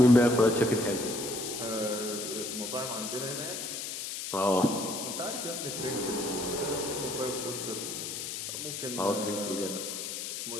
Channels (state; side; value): noise; left; hiss, 5 dB below the sound